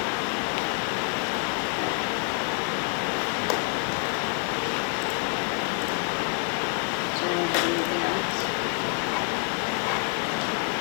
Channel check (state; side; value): quieter; right; 39.1 dB